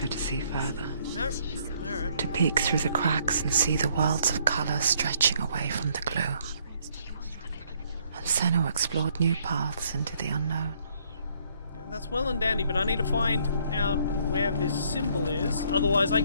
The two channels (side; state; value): both; inverted; correlation -0.67